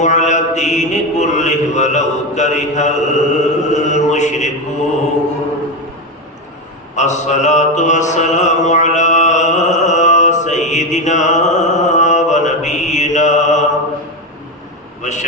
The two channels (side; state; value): both; normal; correlation 0.14